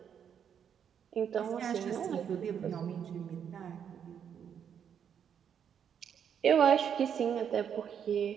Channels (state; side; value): quieter; left; 8.2 dB